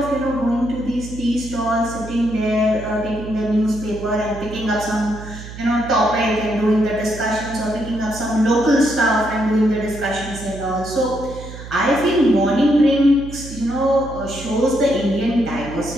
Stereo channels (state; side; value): noise; right; hum, 13 dB below the sound